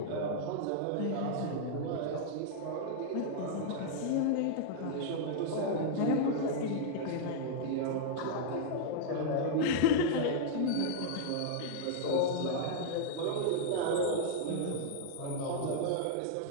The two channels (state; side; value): different; both; correlation -0.01